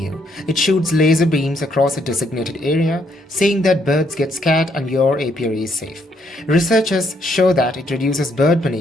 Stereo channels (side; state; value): both; normal; correlation 0.72